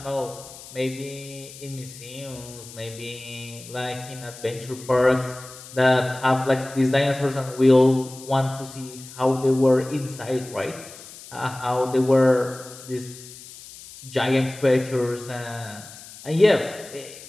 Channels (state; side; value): noise; left; hiss, 17 dB below the sound